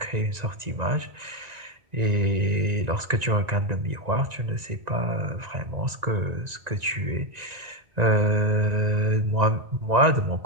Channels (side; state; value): left; late; 1.9 ms